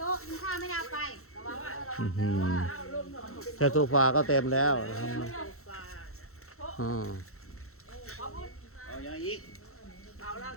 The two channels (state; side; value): late; right; 0.63 ms